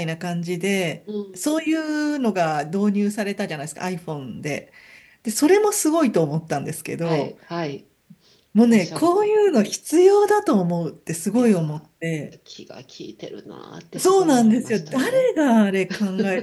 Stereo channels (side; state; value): both; identical; correlation 1.00